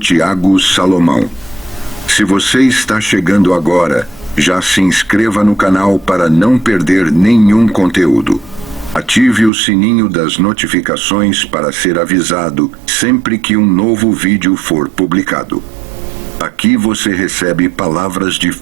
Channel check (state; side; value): drops out; left; at 9.5 s